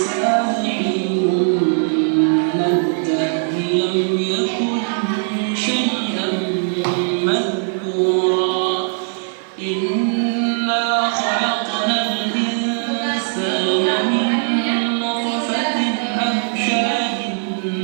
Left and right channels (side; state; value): left; silent; digital silence